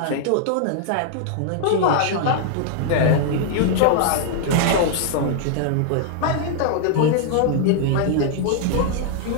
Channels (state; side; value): different; both; correlation -0.01